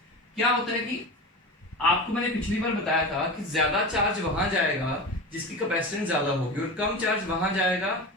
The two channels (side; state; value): both; normal; correlation 0.28